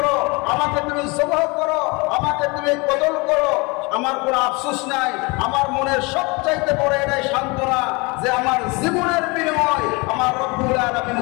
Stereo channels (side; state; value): right; quieter; 27.2 dB